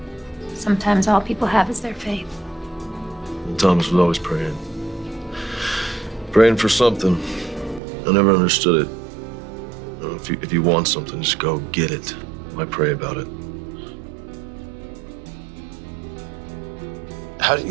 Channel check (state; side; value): drops out; left; at 7.8 s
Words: Sometimes all people have is their faith. And Thomas was always praying. Praying for something. I never understood it. You know, if you want something, just go get it. Why pray about it? How do you